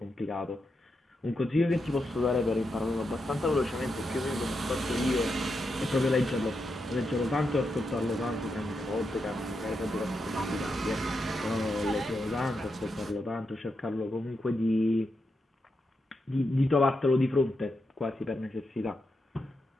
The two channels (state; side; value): normal; both; correlation 0.85